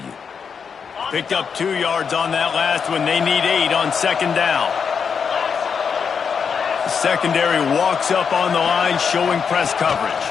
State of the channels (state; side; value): quieter; right; 6.4 dB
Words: Picked up 2 yards on that last one. They need 8 on 2nd down. The secondary walks up on the line, showing press coverage.